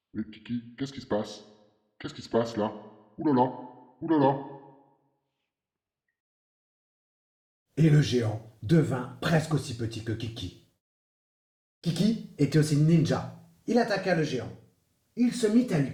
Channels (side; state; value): both; identical; correlation 1.00